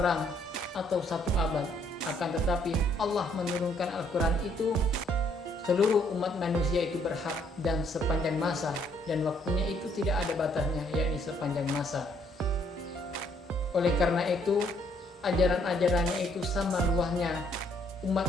atau satu abad. Akan tetapi Allah menurunkan Al-Quran itu seluruh umat manusia itu berhak dan sepanjang masa, dan waktunya itu tidak ada batasnya, yakni sepanjang masa. Oleh karena itu ajaran-ajarannya itu sama luasnya umat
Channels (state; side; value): normal; both; correlation 0.67